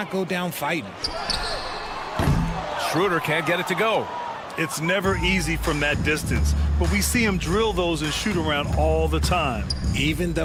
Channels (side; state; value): both; identical; correlation 1.00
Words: go down fighting? Schroeder can't get it to go. It's never easy from that distance, but we see him drill those and shoot around all the time. Even